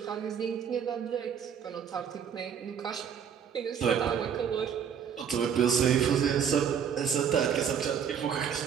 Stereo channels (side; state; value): left; quieter; 7.8 dB